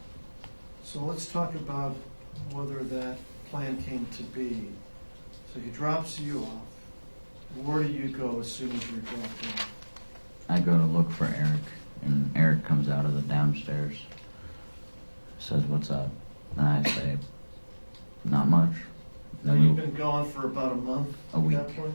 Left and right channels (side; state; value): both; inverted; correlation -1.00